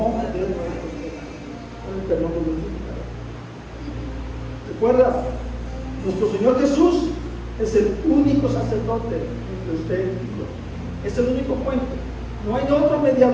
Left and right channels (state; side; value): identical; both; correlation 1.00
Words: de nuestros pecados. Para el perdón de nuestros pecados. Recuerda, nuestro Señor Jesús es el único sacerdote entre usted y yo. Es el único puente. No hay otro